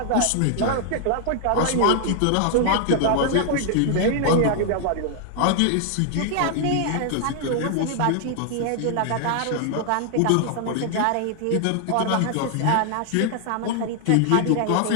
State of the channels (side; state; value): both; different; correlation 0.00